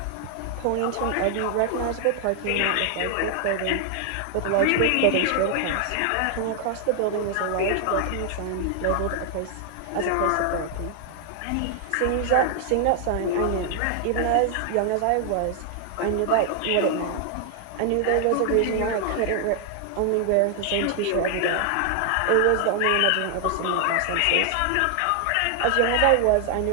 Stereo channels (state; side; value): different; both; correlation 0.00